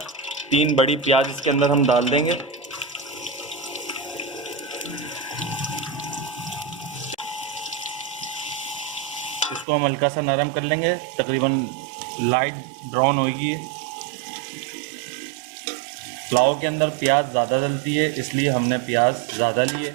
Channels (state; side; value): drops out; left; at 9.7 s